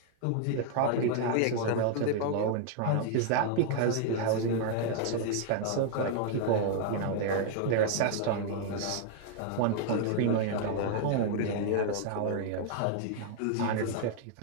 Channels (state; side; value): different; both; correlation 0.00